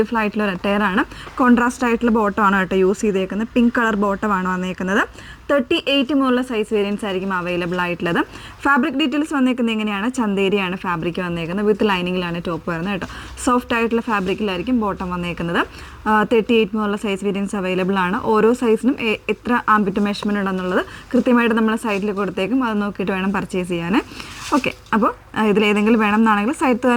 ആയിട്ടുള്ള ഒരു അറ്റയറാണ്. കോൺട്രാസ്റ്റ് ആയിട്ടുള്ള ബോട്ടമാണ് കേട്ടോ യൂസ് ചെയ്തേക്കുന്നത്. പിങ്ക് കളർ ബോട്ടമാണ് വന്നേക്കുന്നത്. 38 മുതലുള്ള സൈസ് വേരിയൻസ് ആയിരിക്കും അവൈലബിൾ ആയിട്ടുള്ളത്. ഫാബ്രിക് ഡീറ്റെയിൽസ് വന്നേക്കുന്നത് എങ്ങനെയാണ്? ചന്ദേരിയാണ് ഫാബ്രിക് വന്നേക്കുന്നത്. വിത്ത് ലൈനിങ്ങിലാണ് ടോപ്പ് വരുന്നത് കേട്ടോ. സോഫ്റ്റ് ആയിട്ടുള്ള ഫാബ്രിക്കിലായിരിക്കും ബോട്ടം വന്നേക്കുന്നത്. 38 മുതലുള്ള സൈസ് വേരിയൻസ് അവൈലബിൾ ആണ്. ഓരോ സൈസിനും എത്ര ആംബിറ്റ് മെഷർമെൻറ്റ് ഉണ്ടെന്നുള്ളത് കൃത്യമായിട്ട് നമ്മൾ സൈറ്റിൽ കൊടുത്തേക്കും. അത് നോക്കിയിട്ട് വേണം പർച്ചേസ് ചെയ്യാൻ. ഓക്കെ, അപ്പോൾ ഇതിലേതെങ്കിലും വേണമെന്നാണെങ്കിൽ സൈറ്റ്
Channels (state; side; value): identical; both; correlation 1.00